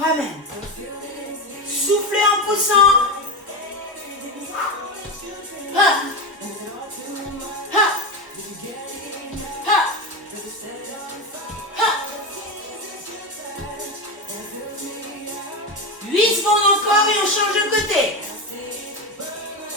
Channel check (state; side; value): normal; both; correlation 0.17